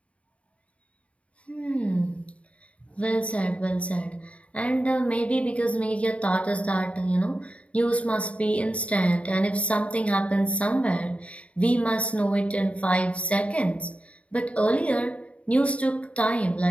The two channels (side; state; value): right; late; 0.064 ms